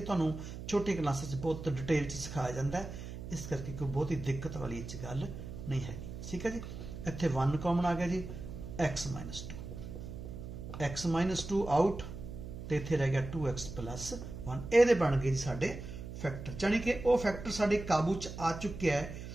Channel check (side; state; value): right; noise; hum, 9 dB below the sound